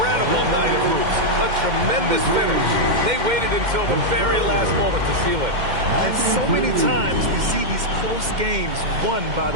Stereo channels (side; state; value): left; late; 2.1 ms